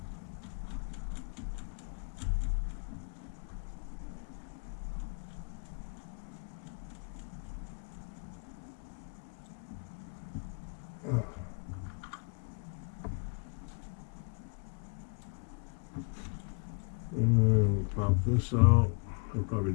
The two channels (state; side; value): quieter; right; 36.5 dB